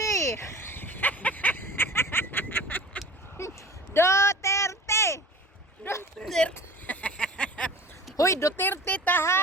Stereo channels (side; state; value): both; normal; correlation 0.40